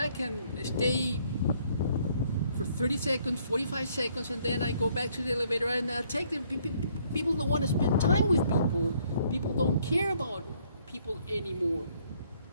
and stay for 30 seconds, 45 seconds, and then I go back to the elevator and take the people don't want to spend time with people. People don't care about people anymore.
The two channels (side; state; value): both; inverted; correlation -0.66